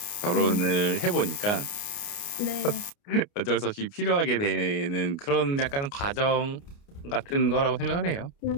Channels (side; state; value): right; late; 29 ms